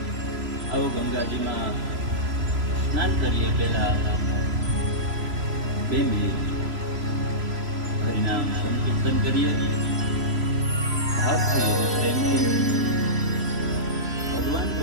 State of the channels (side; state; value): left; late; 3.0 ms